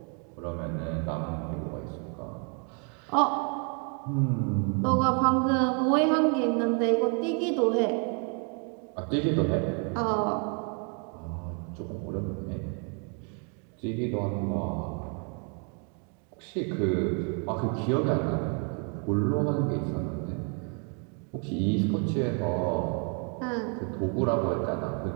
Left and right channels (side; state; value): left; quieter; 39.4 dB